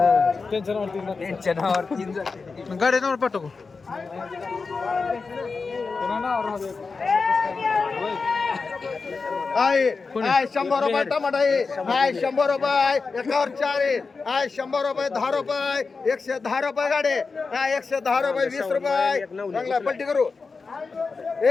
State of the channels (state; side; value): quieter; right; 4.5 dB